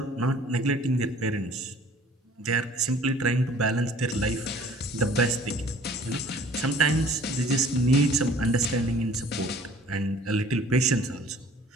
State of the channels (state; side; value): normal; both; correlation 0.51